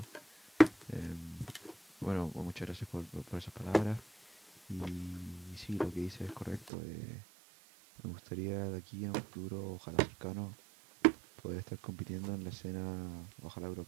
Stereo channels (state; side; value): drops out; left; at 6.7 s